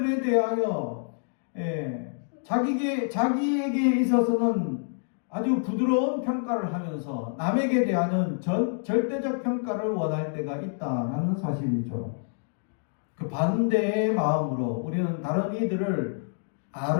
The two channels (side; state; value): right; silent; digital silence